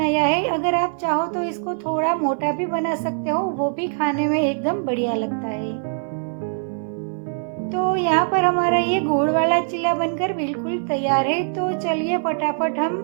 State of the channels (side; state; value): left; silent; 59 dB below the other